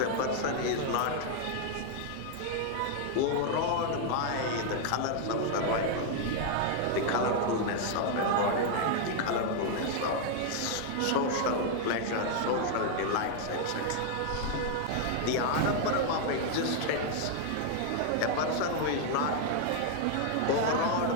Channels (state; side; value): different; both; correlation 0.00